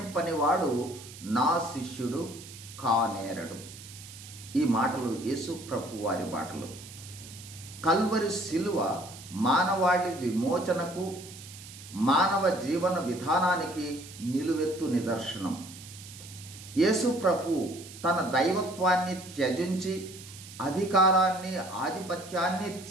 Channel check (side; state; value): right; noise; hiss, 16 dB below the sound